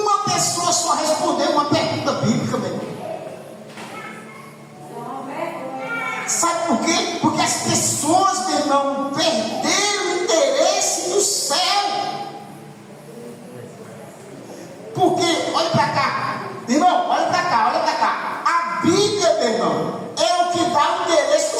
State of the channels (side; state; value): both; identical; correlation 1.00